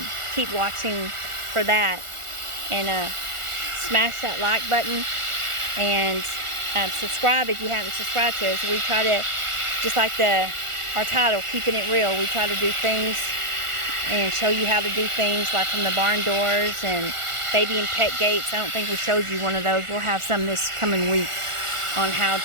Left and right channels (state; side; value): late; left; 1.4 ms